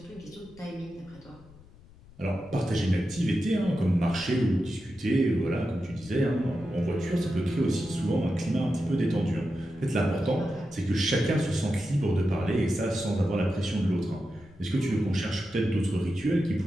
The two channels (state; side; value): noise; left; rumble, 23 dB below the sound